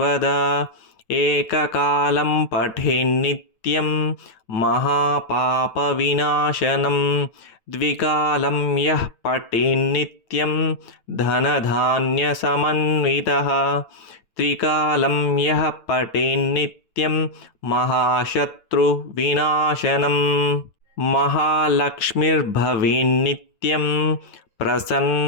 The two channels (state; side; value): late; right; 9.0 ms